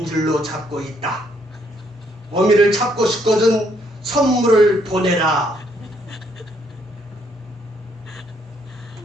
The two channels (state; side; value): normal; both; correlation 0.70